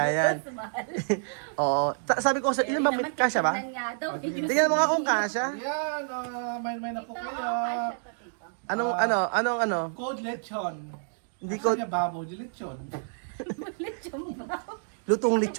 yan. Mas mahal. Oo. Sabi ko, ilan ba? Naman, Kasya ba? tignan nga daw. Tingnan mo nga kung kasya. Yan, may na po Ito, kayo. kasya pa dito. Anong? Code lechon. Hindi Asa ko, niya babo, di lechon. Lechon ba? lutong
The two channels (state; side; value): silent; left; digital silence